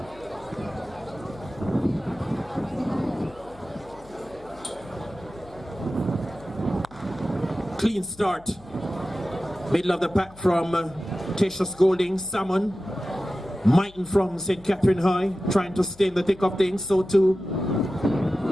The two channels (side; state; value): left; noise; hum, 23 dB below the sound